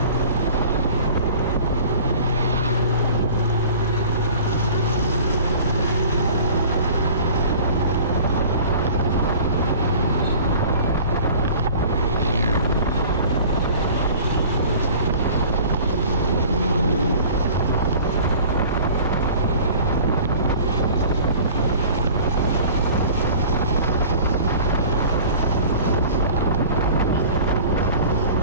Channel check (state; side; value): inverted; both; correlation -0.44